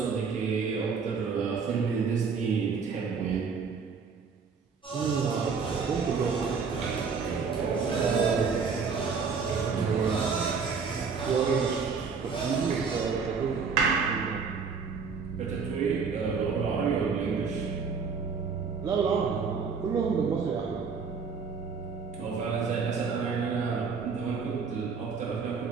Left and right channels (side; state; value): left; quieter; 5.4 dB